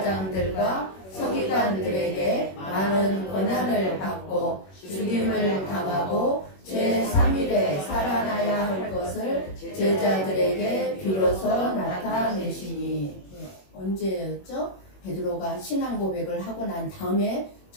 서기관들에게 많은 고난을 받고 죽임을 당하고 제3일에 살아나야 할 것을 제자들에게 비로소 나타내시니. 언제였죠? 베드로가 신앙 고백을 하고 난 다음에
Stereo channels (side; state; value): right; late; 21 ms